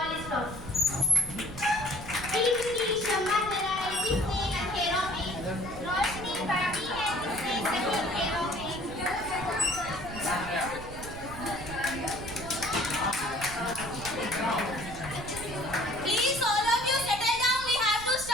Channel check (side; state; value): right; noise; rumble, 12 dB below the sound